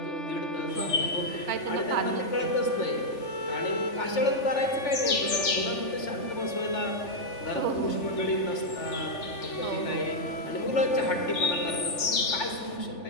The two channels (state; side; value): late; right; 3.4 ms